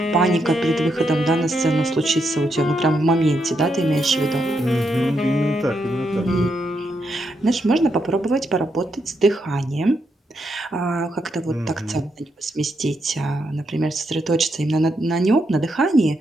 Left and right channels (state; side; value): normal; both; correlation 0.80